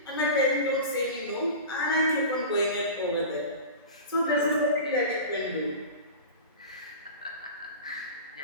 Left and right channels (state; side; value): inverted; both; correlation -0.32